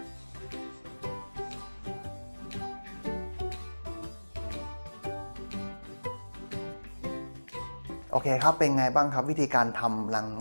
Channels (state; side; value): inverted; both; correlation -1.00